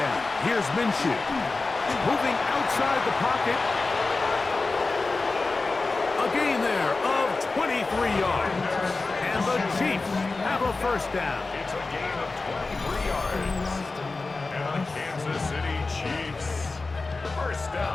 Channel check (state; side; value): quieter; right; 3.7 dB